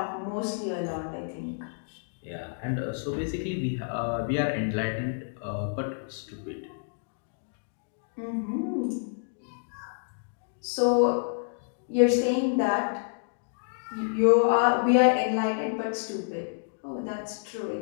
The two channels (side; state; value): right; silent; digital silence